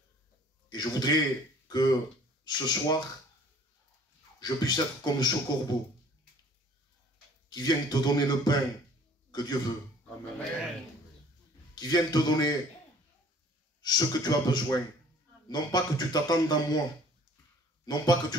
Et je voudrais que ce soir, je puisse être comme ce corbeau qui vient te donner le pain que Dieu veut. Amen. Qui vient te donner ce que tu as besoin. Non pas que tu t'attendes à moi, non pas que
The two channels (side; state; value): both; normal; correlation 0.54